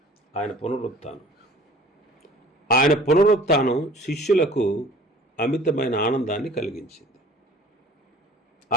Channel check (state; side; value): normal; both; correlation 0.48